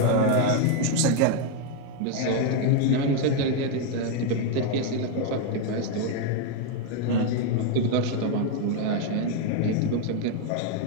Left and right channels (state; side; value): different; both; correlation 0.01